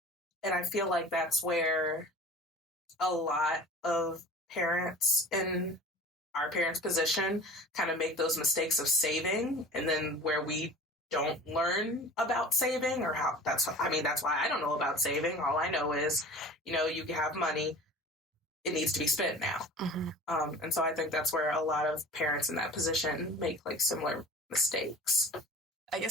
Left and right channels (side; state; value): both; normal; correlation 0.40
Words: And I feel that's where a lot of parents in our parents' position kind of make those mistakes of saving, and then where we don't learn about saving, or how that's why I don't know about saving. All I know is, you have money, it needs to be spent now. Mm-hmm. And so I think that's where a lot of parents in that position make similar mistakes. I